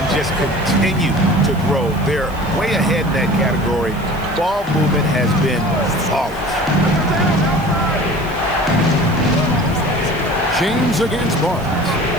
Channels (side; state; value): right; noise; hiss, 22 dB below the sound